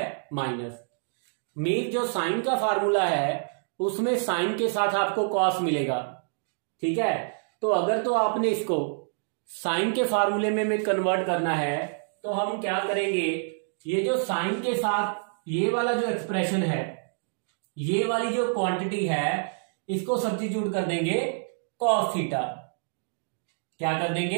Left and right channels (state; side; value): silent; left; digital silence